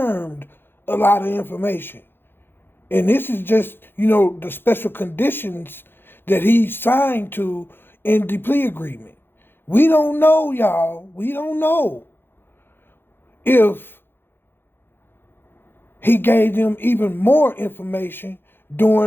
a lot of information. And this is just, the special conditions that he signed to in the plea agreement. We don't know, y'all. We don't know if he gave them even more information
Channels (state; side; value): late; right; 0.10 ms